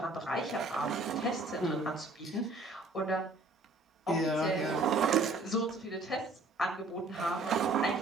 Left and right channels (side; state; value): left; quieter; 3.1 dB